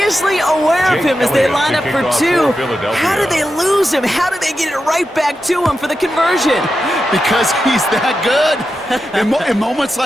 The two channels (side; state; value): both; normal; correlation 0.89